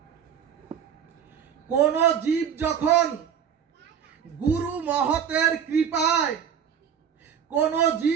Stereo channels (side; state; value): left; quieter; 8.1 dB